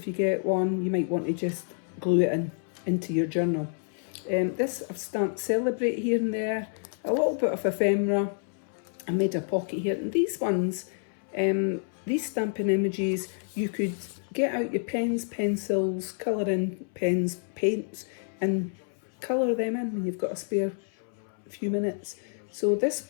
you get one, you might want to just glue it into your journal. This I've stamped Celebrate here and there, a little bit of ephemera. I made a pocket here, and these ones, these stamping images, you could get out your pens, pencils, colouring pens, paints, and colour them in when you've got a spare few minutes. So this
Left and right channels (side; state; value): right; silent; 59 dB below the other